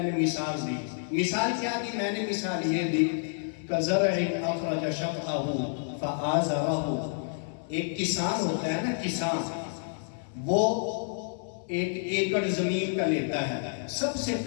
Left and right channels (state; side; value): silent; right; 58 dB below the other